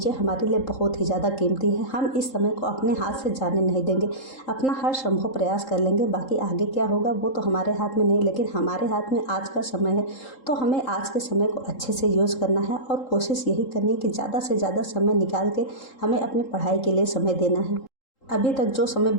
हमारे लिए बहुत ही ज़्यादा कीमती है। हम इस समय को अपने हाथ से जाने नहीं देंगे, अपना हर संभव प्रयास कर लेंगे। बाकी आगे क्या होगा वो तो हमारे हाथ में नहीं, लेकिन हमारे हाथ में आज का समय है। तो हमें आज के समय को अच्छे से यूज़ करना है और कोशिश यही करनी है कि ज़्यादा से ज़्यादा समय निकाल के हमें अपनी पढ़ाई के लिए समय देना है। अभी तक जो समय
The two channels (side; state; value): right; late; 3.8 ms